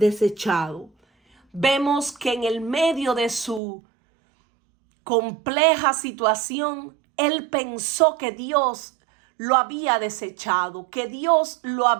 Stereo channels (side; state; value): left; drops out; at 3.6 s